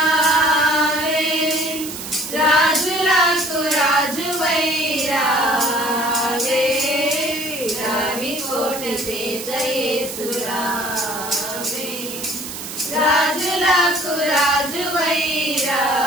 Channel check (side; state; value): right; noise; hiss, 9 dB below the sound